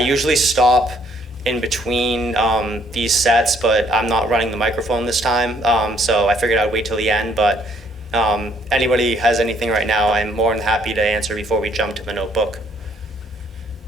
stop in between these sets, but I'm not running the microphone this time, so I figured I'd wait till the end. But anybody has anything right now, I'm more than happy to answer before we jump to the notebook.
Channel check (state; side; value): normal; both; correlation 0.66